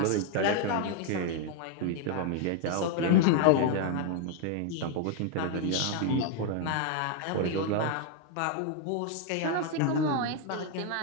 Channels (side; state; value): both; different; correlation 0.00